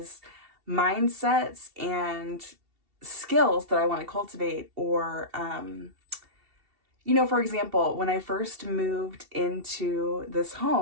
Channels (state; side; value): late; left; 2.7 ms